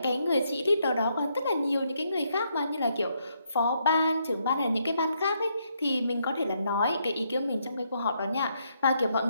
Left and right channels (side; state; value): both; inverted; correlation -0.76